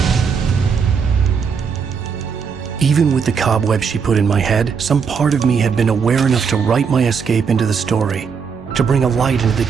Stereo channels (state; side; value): quieter; left; 6.2 dB